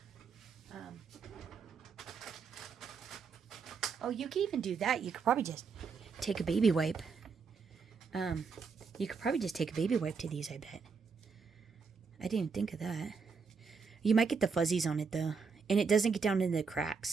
Oh, you can even do that. You could probably just take a baby wipe. You could probably just take a baby wipe to these, I bet. I didn't think of that. You might get the fuzzies on it, though. And it doesn't get down into the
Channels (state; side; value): quieter; left; 5.3 dB